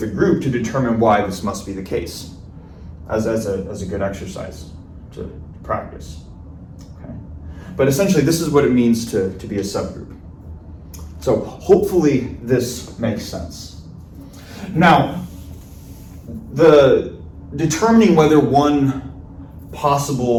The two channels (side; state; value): both; identical; correlation 1.00